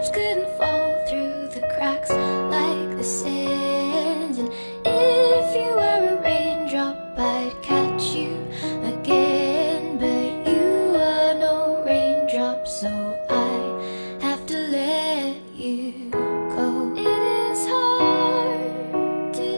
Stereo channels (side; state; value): both; inverted; correlation -1.00